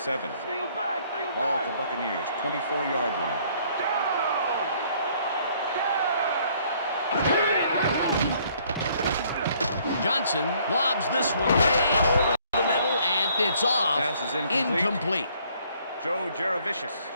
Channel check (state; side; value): inverted; both; correlation -0.63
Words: Steal back, steal Ball back. at the Buccaneers, 24-yard line. Johnson lobs this one way over the middle, and it's off. Pass is incomplete. Incomplete. Joe